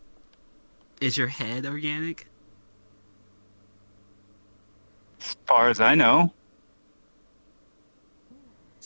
head organic? As far as I know.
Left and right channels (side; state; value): both; inverted; correlation -1.00